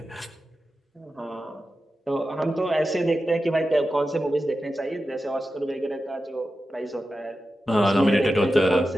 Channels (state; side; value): normal; both; correlation 0.92